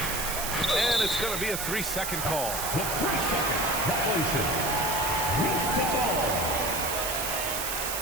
And it's going to be a 3-second call. The 3-second violation. Release the ball.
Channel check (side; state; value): right; noise; hiss, 3 dB below the sound